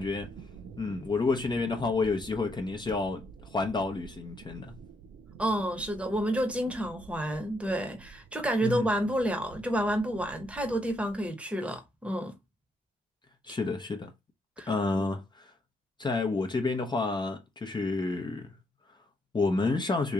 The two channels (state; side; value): normal; both; correlation 0.76